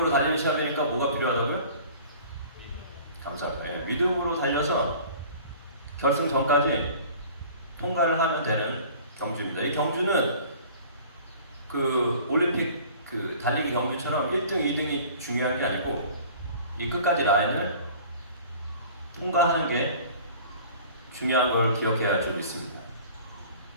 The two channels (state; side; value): inverted; both; correlation -0.46